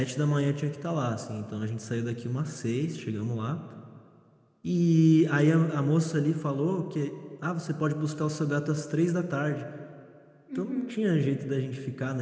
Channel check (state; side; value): identical; both; correlation 1.00